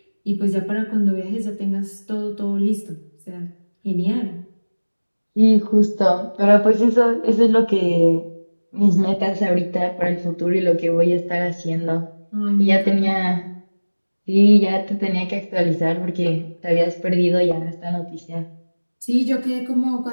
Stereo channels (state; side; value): inverted; both; correlation -1.00